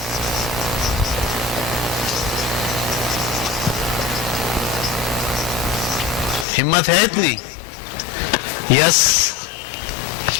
ہمت ہے اتنی؟ یس.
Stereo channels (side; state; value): right; drops out; at 6.5 s